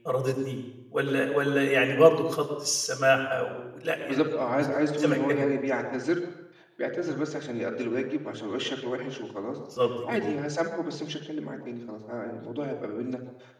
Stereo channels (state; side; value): identical; both; correlation 1.00